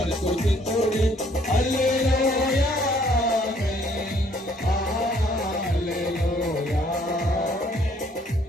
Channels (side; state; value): both; normal; correlation 0.63